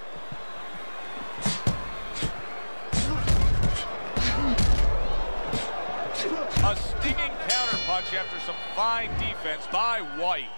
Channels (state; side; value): inverted; both; correlation -1.00